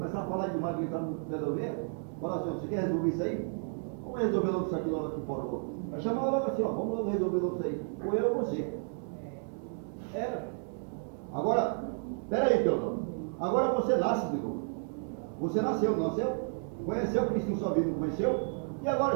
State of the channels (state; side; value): silent; left; 56 dB below the other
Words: a falar demais, gritar no pé da orelha. Falar assim, você quer resolver isso aí? Vamos resolver logo isso aqui logo aqui fora logo. Aí chamava logo assim, vamos logo resolver logo isso aí. Ou eu ou você. Era. Agora, peraí, Teodoro. Agora você nasce de novo. Você nasceu, não nasceu? Conheceu Cristo na sua vida, não conheceu? E